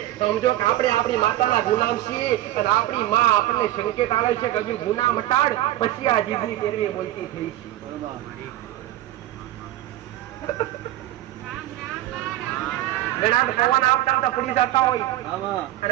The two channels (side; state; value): left; quieter; 14.5 dB